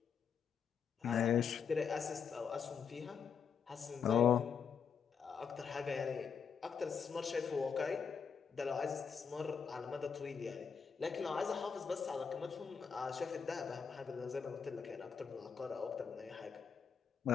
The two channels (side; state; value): right; quieter; 6.5 dB